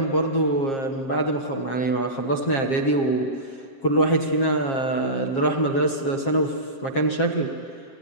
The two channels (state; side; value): late; right; 7.5 ms